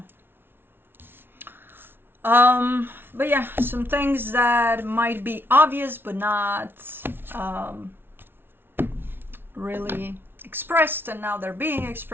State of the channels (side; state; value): left; late; 0.11 ms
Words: But yeah, some things that might be obvious but not really expressed, and now they're being